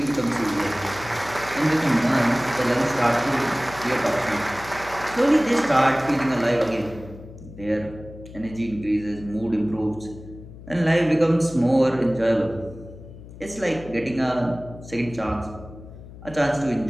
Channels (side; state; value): left; noise; hum, 16 dB below the sound